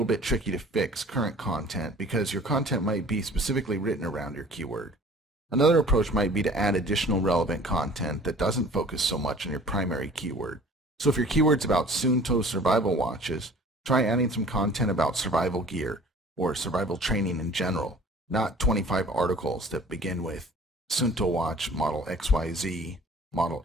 bit tricky to fix current content because your content might be specifically written around your keyword. Another approach might be to add additional relevant content that doesn't focus so much on your primary keyword. So if your keyword's about Suunto survival watches, try adding some content about survival gear or survival training in general, not 25 articles that begin with Suunto watch model XYZ, model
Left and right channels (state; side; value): normal; both; correlation 0.48